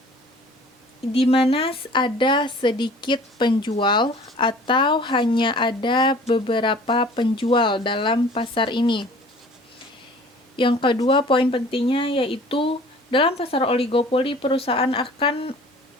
di mana ada sedikit penjual atau hanya ada beberapa penjual dalam pasar ini. Yang kedua, poin pentingnya yaitu dalam pasar oligopoli perusahaan akan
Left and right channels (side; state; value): both; normal; correlation 0.48